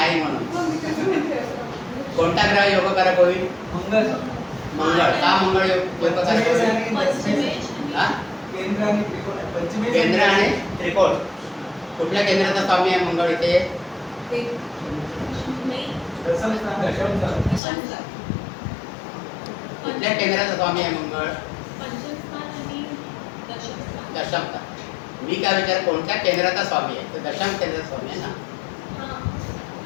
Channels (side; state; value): right; drops out; at 17.6 s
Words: म्हणून. मग मी कसं म्हणते असं? कोणता ग्रह योगकारक होईल? मंगळ मंगळ. का मंगळ योगकारक होईल? पंचमेश हा? केंद्र आणि त्रिकोण पंचमेश केंद्र आणि त्रिकोण. कुठल्या केंद्राचा स्वामी आहे मंगळ इथे? एक नाही. दशम स्थान पंचम. कुठल्या केंद्राचा स्वामी आहे मंगळ? पंचमस्थान आणि दशमस्थान. दशमता. मी काय विचार कोणत्या केंद्राचा स्वामी आहे? तर दशम केंद्राचा स्वामी आहे ना. हां.